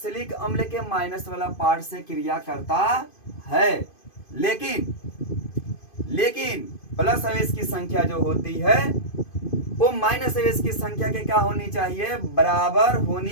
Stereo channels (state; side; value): late; right; 2.5 ms